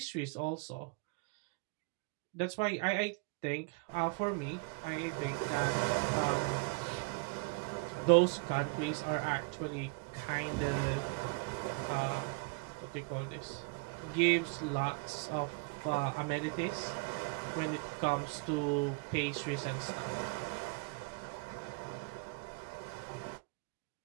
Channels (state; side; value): quieter; left; 30.7 dB